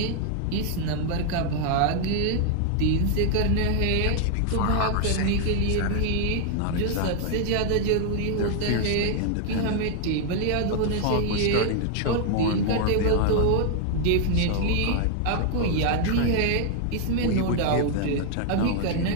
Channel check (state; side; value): different; both; correlation 0.00